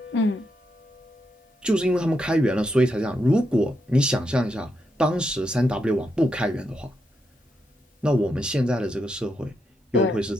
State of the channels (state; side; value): normal; both; correlation 0.82